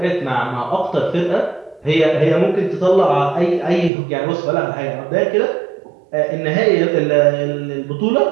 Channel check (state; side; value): drops out; left; at 3.9 s